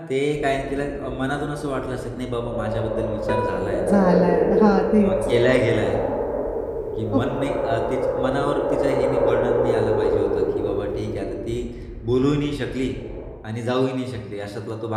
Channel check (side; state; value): both; identical; correlation 1.00